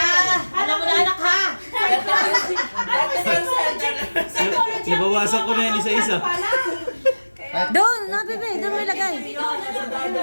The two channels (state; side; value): inverted; both; correlation -1.00